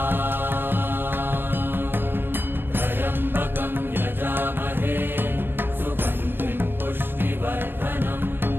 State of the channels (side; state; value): left; late; 0.10 ms